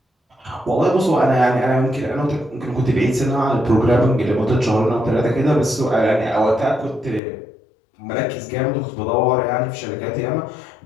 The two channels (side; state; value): right; drops out; at 7.2 s